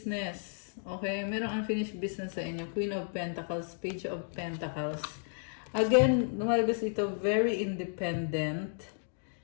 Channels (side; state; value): right; silent; digital silence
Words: Okay, merong unfinished business sa inyo. Queen of Pentacles, Page of Pentacles. Again, lumalabas ito, very independent.